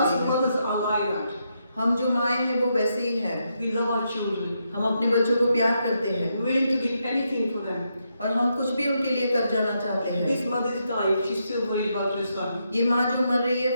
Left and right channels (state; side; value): inverted; both; correlation -0.81